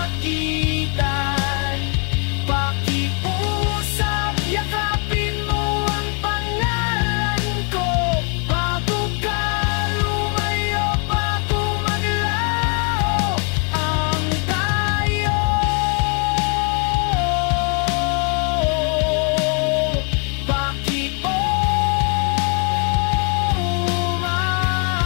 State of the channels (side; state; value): right; quieter; 37.7 dB